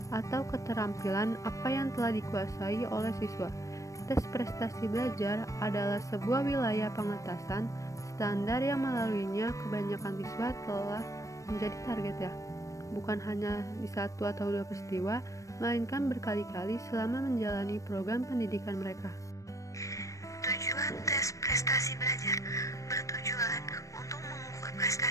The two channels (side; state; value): right; late; 0.16 ms